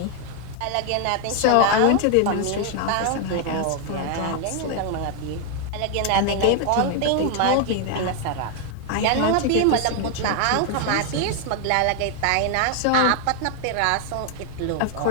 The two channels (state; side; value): different; both; correlation 0.00